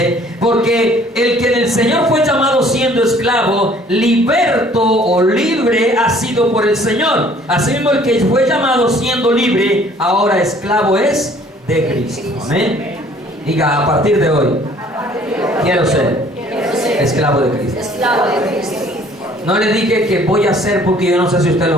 porque el que del Señor fue llamado siendo esclavo, liberto o libre ha sido por el Señor. Asimismo, el que fue llamado siendo libre, ahora esclavo es de Cristo. Amén. Diga, a partir de hoy, quiero ser esclavo de Cristo. No le dije que voy a hacer, porque yo no sé si usted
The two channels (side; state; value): both; normal; correlation 0.56